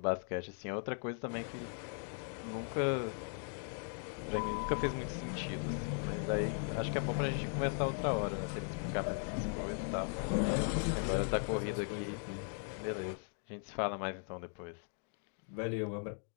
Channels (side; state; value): right; silent; 52 dB below the other